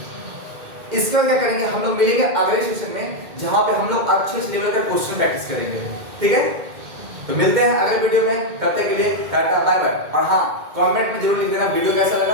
इसके बाद क्या करेंगे, हम लोग मिलेंगे अगले सेशन में जहां पे हम लोग अच्छे लेवल का क्वेश्चन प्रैक्टिस करेंगे, ठीक है। तो मिलते हैं अगले वीडियो में, तब तक के लिए टाटा बाय बाय। और हाँ, कमेंट में जरूर लिख देना वीडियो कैसा लगा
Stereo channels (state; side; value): late; left; 2.1 ms